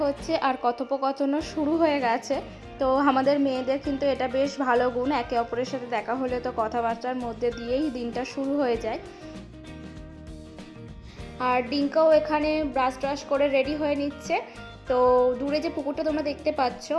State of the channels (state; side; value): identical; both; correlation 1.00